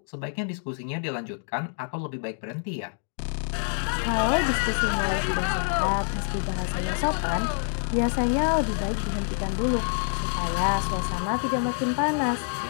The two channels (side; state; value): right; silent; 60 dB below the other